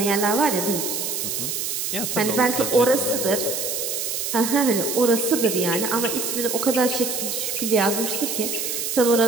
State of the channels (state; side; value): noise; right; hiss, 2 dB below the sound